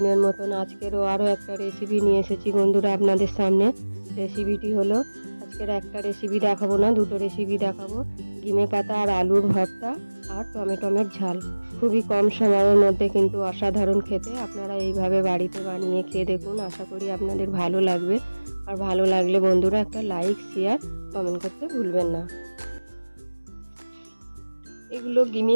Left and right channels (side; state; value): both; inverted; correlation -1.00